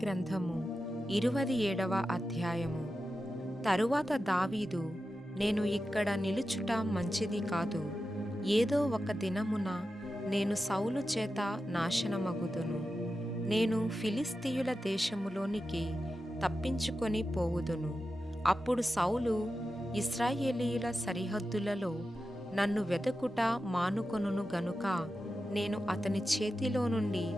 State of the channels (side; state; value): both; normal; correlation 0.91